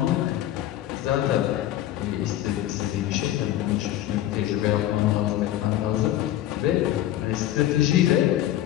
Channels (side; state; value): right; quieter; 13.3 dB